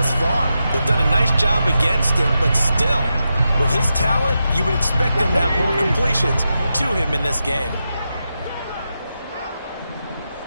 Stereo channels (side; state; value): both; inverted; correlation -0.88